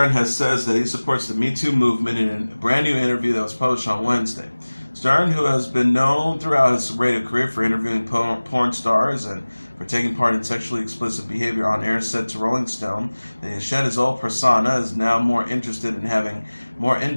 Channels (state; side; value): inverted; both; correlation -1.00